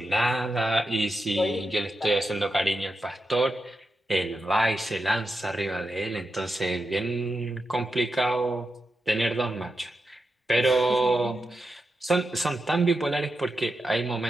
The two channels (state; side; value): normal; both; correlation 0.88